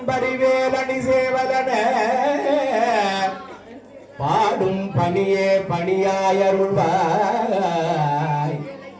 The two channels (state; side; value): identical; both; correlation 1.00